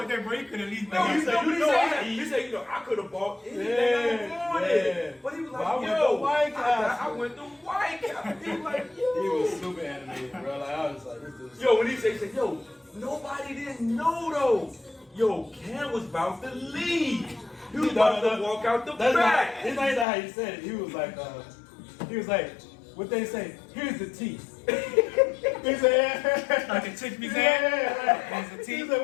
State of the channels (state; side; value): drops out; right; at 20.1 s